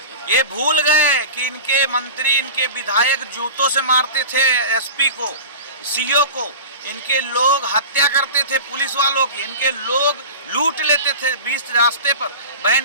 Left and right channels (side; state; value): both; inverted; correlation -0.33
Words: ये भूल गए कि इनके मंत्री, इनके विधायक जूतों से मारते थे एसपी को, सीओ को। इनके लोग हत्या करते थे पुलिस वालों की, इनके लोग लूट लेते थे बीच रास्ते पर,